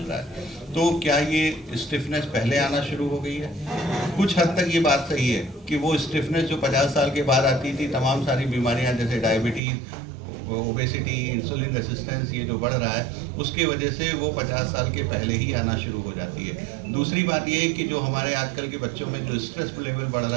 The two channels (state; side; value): drops out; left; at 9.6 s